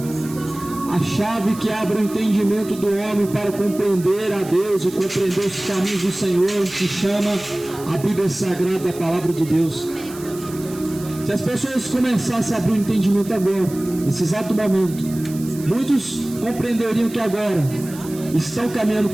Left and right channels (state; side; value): noise; right; hiss, 17 dB below the sound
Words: A chave que abre o entendimento do homem para compreender a Deus e compreender os caminhos do Senhor, se chama a Bíblia Sagrada, a Palavra de Deus. Se as pessoas começassem a abrir o entendimento agora, nesse exato momento, muitos compreenderiam que agora estão caminhando